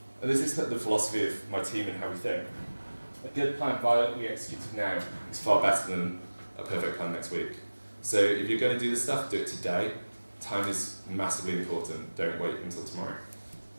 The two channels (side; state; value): both; inverted; correlation -1.00